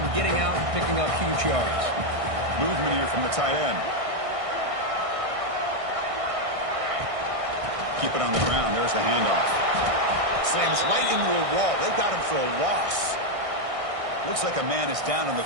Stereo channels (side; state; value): left; late; 1.6 ms